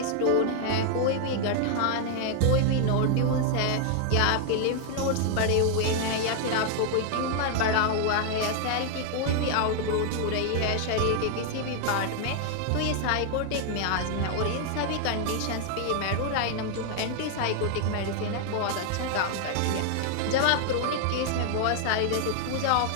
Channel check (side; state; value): both; different; correlation 0.00